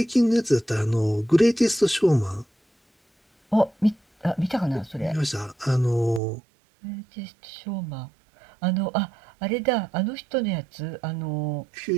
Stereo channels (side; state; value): left; drops out; at 6.2 s